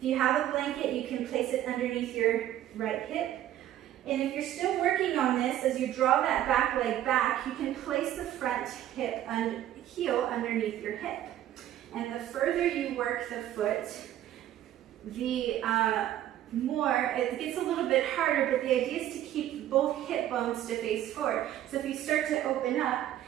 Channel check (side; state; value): left; quieter; 12.4 dB